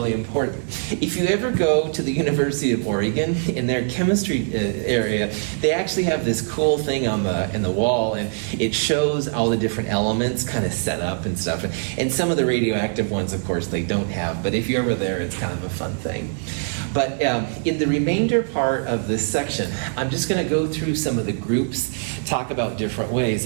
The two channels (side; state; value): left; silent; digital silence